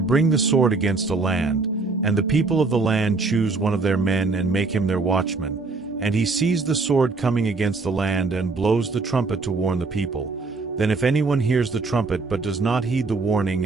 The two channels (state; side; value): quieter; left; 3.9 dB